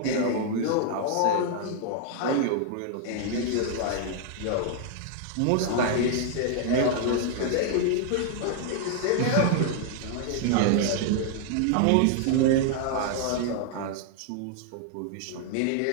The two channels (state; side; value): different; both; correlation 0.00